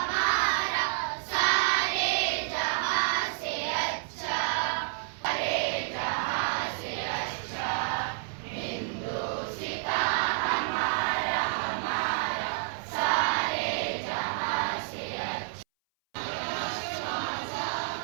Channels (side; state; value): left; silent; 58 dB below the other